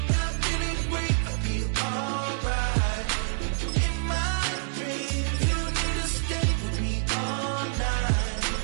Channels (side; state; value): left; silent; digital silence